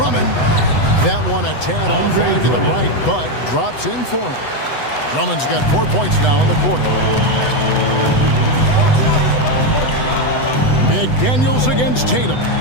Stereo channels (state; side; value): late; right; 8.0 ms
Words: That one a tad off line to the right, but drops in for him. Drummond's got 4 points now in the quarter. McDaniels against Tatum.